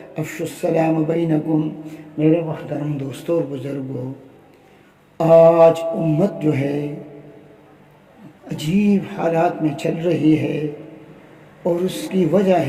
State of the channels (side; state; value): both; identical; correlation 1.00